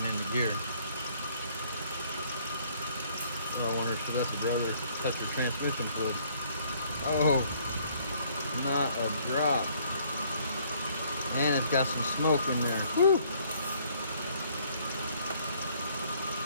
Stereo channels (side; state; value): both; inverted; correlation -0.63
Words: into gear. Oh, I wonder, should let the brother touch the transmission fluid. Oh, not a drop. And it's got some smoke in there. Woo!